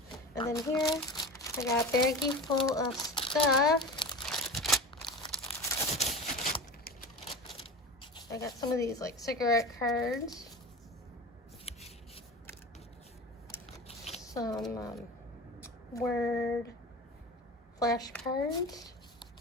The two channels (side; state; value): both; normal; correlation 0.30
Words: And then here, I got a baggie full of stuff. I got some of these like cigarette cards. Some word flashcards.